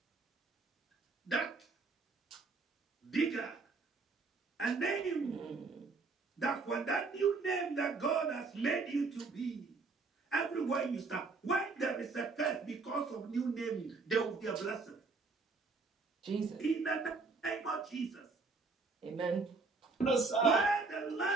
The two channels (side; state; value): left; quieter; 4.2 dB